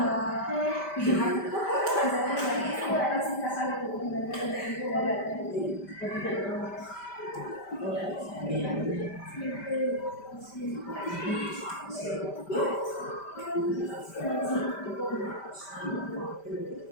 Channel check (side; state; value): right; late; 5.1 ms